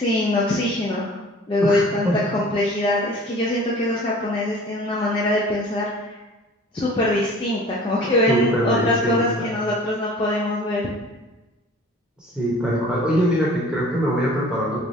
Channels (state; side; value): normal; both; correlation 0.46